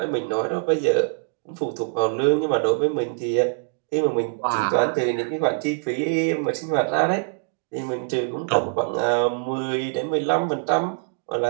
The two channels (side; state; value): left; silent; digital silence